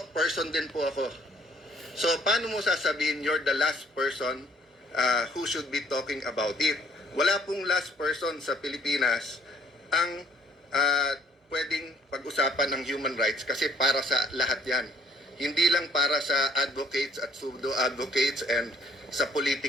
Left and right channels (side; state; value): both; normal; correlation 0.60